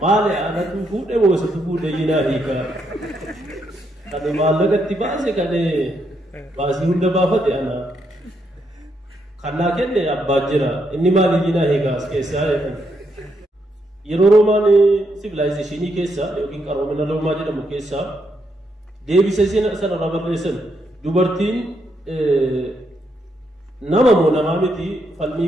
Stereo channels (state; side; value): normal; both; correlation 0.78